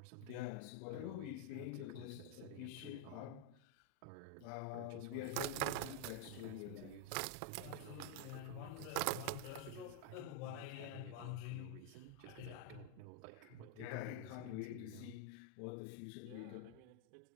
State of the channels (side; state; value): both; different; correlation 0.00